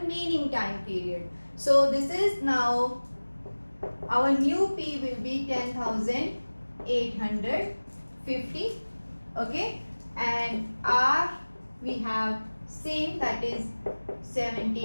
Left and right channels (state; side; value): inverted; both; correlation -1.00